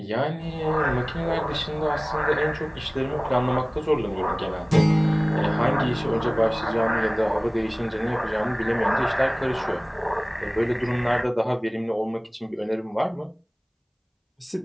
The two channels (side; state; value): both; identical; correlation 1.00